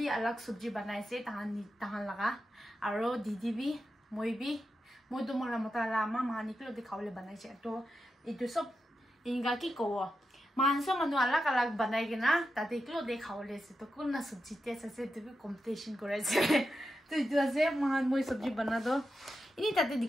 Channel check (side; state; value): both; normal; correlation 0.88